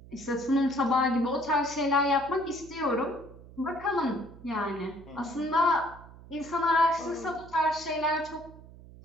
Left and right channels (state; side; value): noise; right; hum, 19 dB below the sound